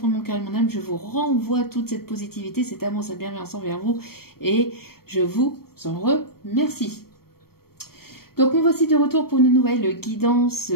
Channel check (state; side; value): late; right; 0.94 ms